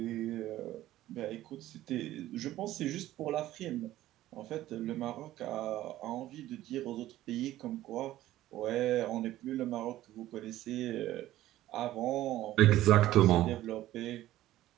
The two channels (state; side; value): quieter; left; 14.6 dB